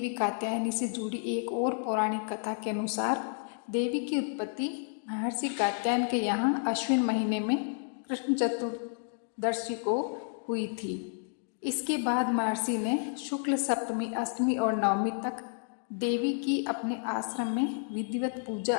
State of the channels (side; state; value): right; silent; 57 dB below the other